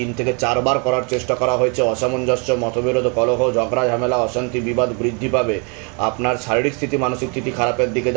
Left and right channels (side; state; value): left; quieter; 35.2 dB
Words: থেকে 4 বার করার চেষ্টা করা হয়েছে। অসামঞ্জস্য, মতবিরোধ, কলহ, ঝগড়া, ঝামেলা, অশান্তি, বিবাদ বৃদ্ধি পাবে। আপনার শারীরিক স্থিতি, মানসিক স্থিতি খারাপের দিকে